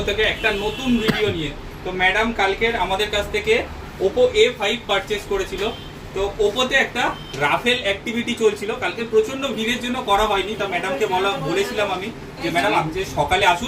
থেকে একটা নতুন ভিডিও নিয়ে। তো ম্যাডাম কালকের আমাদের কাছ থেকে ওপো A5 পারচেস করেছিল। তো ওপোতে একটা রাফেল অ্যাক্টিভিটি চলছিল, কালকে প্রচন্ড ভিড়ের জন্য করা হয়নি। তো ম্যাডামকে বলেছিলাম আমি যে ম্যাডাম আপনি যে সকালে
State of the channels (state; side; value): identical; both; correlation 1.00